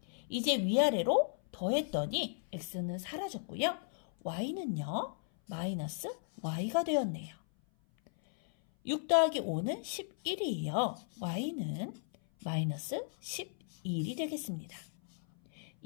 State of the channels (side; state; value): right; silent; 54 dB below the other